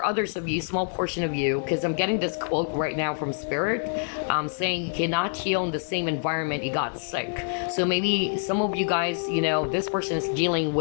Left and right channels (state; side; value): silent; right; 61 dB below the other